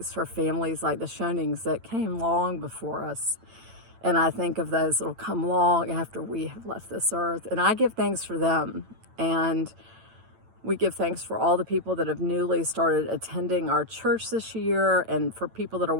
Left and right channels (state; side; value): late; left; 9.0 ms